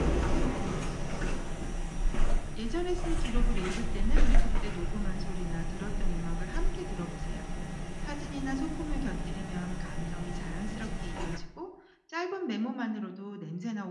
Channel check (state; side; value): identical; both; correlation 1.00